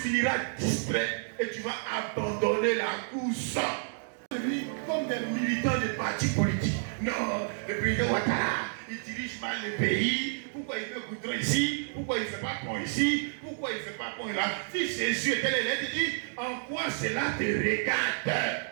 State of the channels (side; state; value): left; silent; digital silence